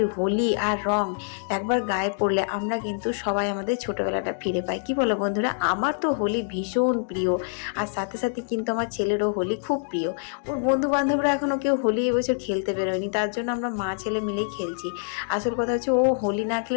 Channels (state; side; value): silent; right; digital silence